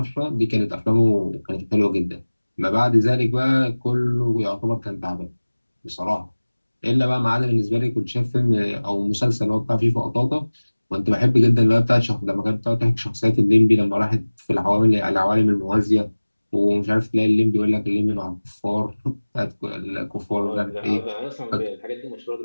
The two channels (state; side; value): inverted; both; correlation -1.00